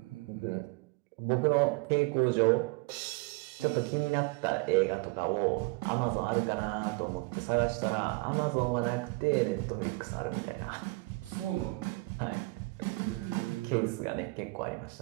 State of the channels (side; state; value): left; quieter; 25.8 dB